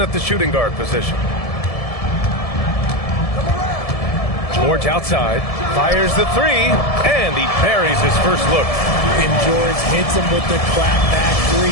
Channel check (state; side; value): late; right; 1.7 ms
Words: at the shooting guard position. George outside, fires the three, and he buries his first look. And George hits him with the clapback